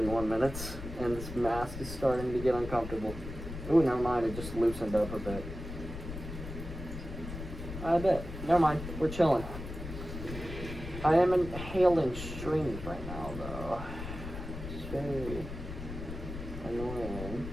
minutes, and this mask is starting to get uncomfortable. Ooh, never mind, it just loosened up a bit. I bet. Never mind, we're chilling. I am inhaling streams right now, though. It's very annoying.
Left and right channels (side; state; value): left; noise; rumble, 9 dB below the sound